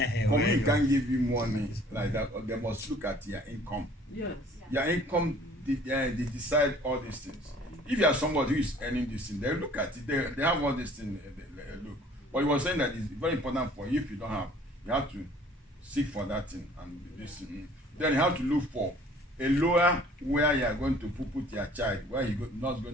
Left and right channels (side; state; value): both; normal; correlation 0.53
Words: Company can't give you money like that. Or they must look at your income. Yes. Your income, they decide all these things. If you are somebody who is earning this thing, they look at it. They have all these things. They look. But he was saying that it's very important for you. If you don't have, you have to seek for that thing and this thing. Then you have to look for a lawyer where you are going to put your child, where you not